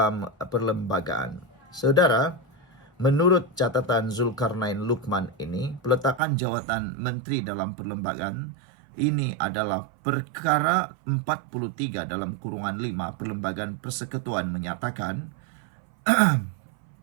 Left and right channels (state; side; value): drops out; left; at 6.2 s